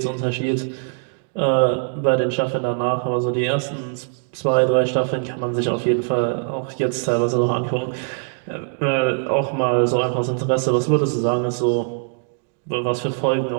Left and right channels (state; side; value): silent; left; 64 dB below the other